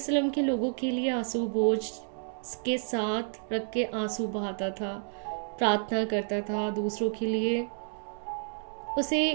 के लोगों के लिए आंसू बोझ के साथ रख के आंसू बहाता था, प्रार्थना करता था दूसरों के लिए। उसे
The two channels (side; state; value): left; silent; digital silence